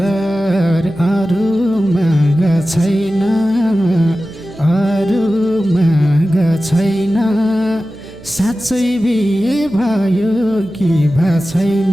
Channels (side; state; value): right; noise; hum, 20 dB below the sound